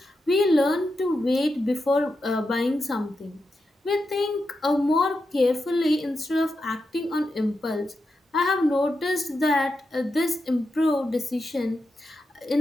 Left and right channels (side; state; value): both; normal; correlation 0.88